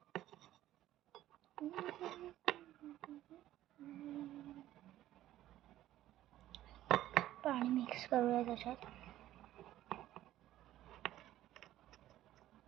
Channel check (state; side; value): quieter; left; 13.7 dB